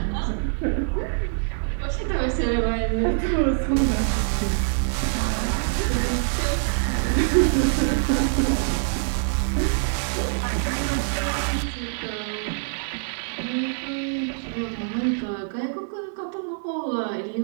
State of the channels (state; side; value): silent; left; 56 dB below the other